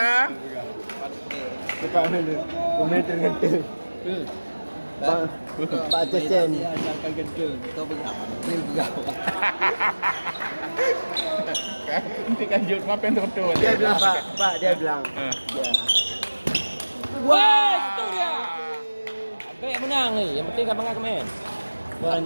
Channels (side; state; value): both; inverted; correlation -1.00